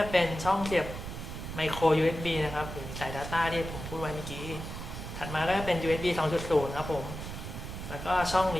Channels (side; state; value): right; noise; rumble, 8 dB below the sound